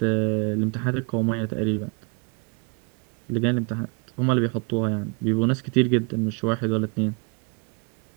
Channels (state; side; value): quieter; left; 33.8 dB